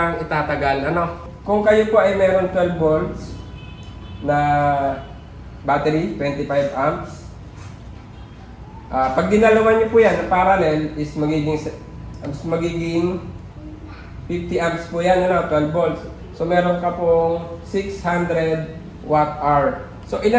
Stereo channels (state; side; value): identical; both; correlation 1.00